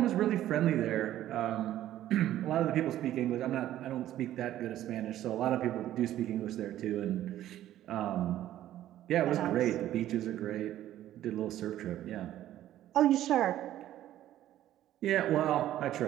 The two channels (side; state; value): left; quieter; 12.9 dB